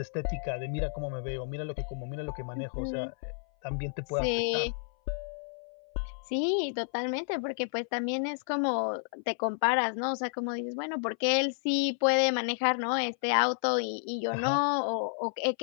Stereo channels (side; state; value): right; silent; 57 dB below the other